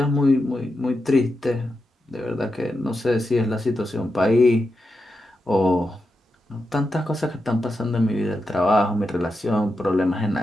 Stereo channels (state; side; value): normal; both; correlation 0.88